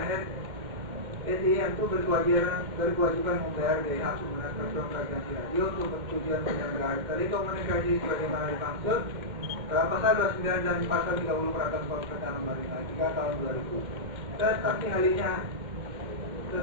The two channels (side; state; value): left; late; 2.1 ms